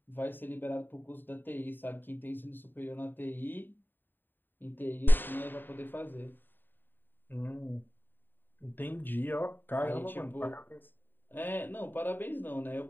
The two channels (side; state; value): right; late; 0.093 ms